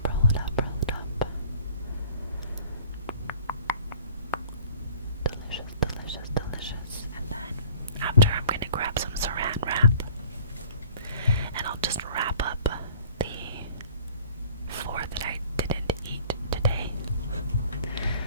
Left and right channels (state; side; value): inverted; both; correlation -0.50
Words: roll it up, roll it up. Delicious, delicious, delicious. And then after I'm going to grab some saran wrap. And I'll just wrap up the 4 that I didn't eat today.